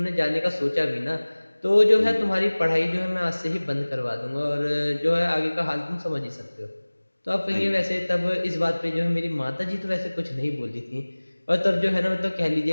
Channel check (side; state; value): both; inverted; correlation -1.00